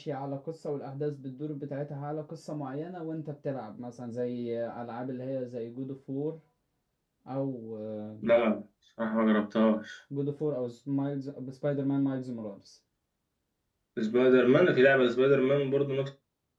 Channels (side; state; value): both; identical; correlation 1.00